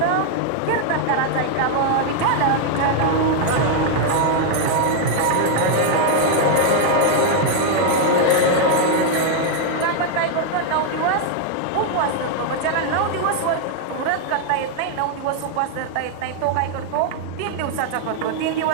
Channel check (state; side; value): different; both; correlation 0.00